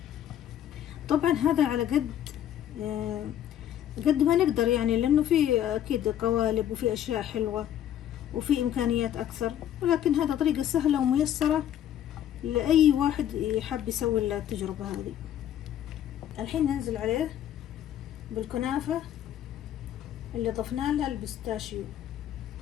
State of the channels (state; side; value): quieter; right; 10.9 dB